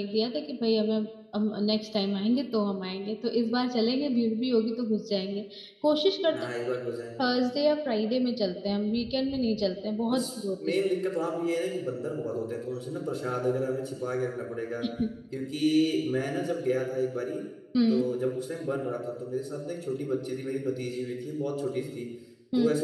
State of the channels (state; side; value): identical; both; correlation 1.00